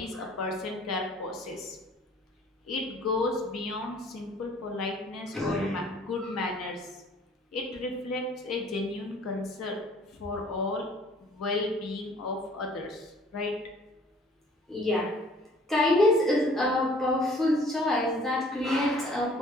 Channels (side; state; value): both; normal; correlation 0.55